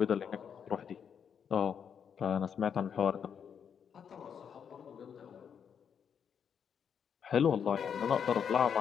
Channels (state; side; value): quieter; right; 7.5 dB